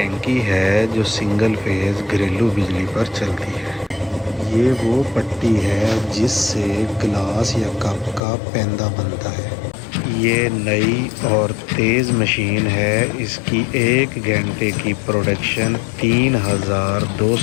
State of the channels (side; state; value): right; drops out; at 8.2 s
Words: है जो सिंगल फेज़ घरेलू बिजली पर चलती है। ये वो पट्टी है जिससे गिलास या कप का पैंदा बनता है। ये नई और तेज़ मशीन है। इसकी 1 घंटे की प्रोडक्शन